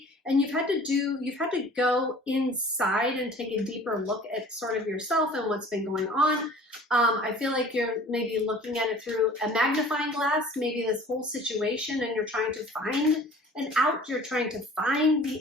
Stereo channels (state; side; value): normal; both; correlation 0.48